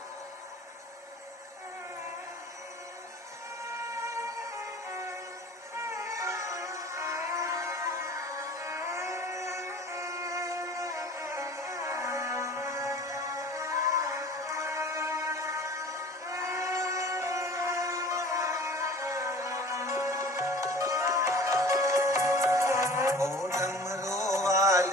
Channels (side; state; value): both; normal; correlation 0.44